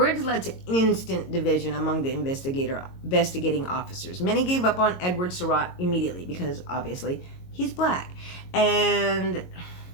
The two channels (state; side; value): late; right; 22 ms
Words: led to instant division among the investigating officers. Many gave up on Edward Surratt immediately because, obviously, he's black. And